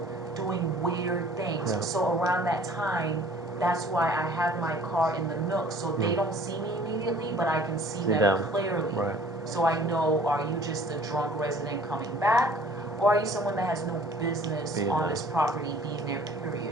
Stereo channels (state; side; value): normal; both; correlation 0.52